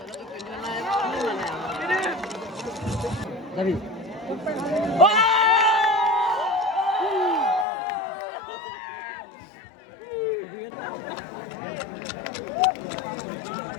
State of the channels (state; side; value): drops out; right; at 7.7 s